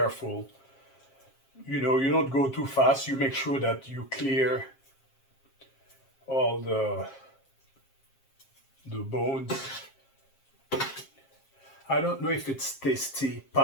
You know, you don't go too fast. You make sure that you clear all the bones. I don't know if it's tasty.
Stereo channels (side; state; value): right; late; 7.4 ms